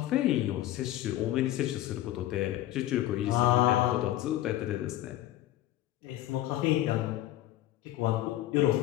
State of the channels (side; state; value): right; quieter; 14.2 dB